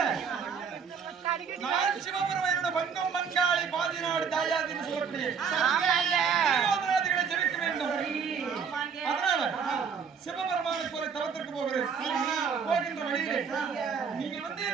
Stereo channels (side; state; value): left; quieter; 6.4 dB